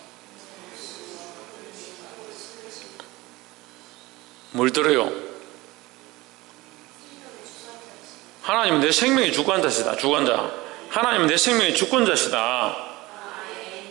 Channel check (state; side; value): quieter; left; 20.5 dB